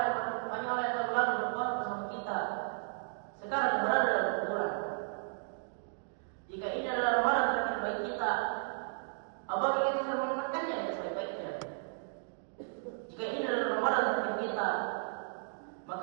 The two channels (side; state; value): left; silent; digital silence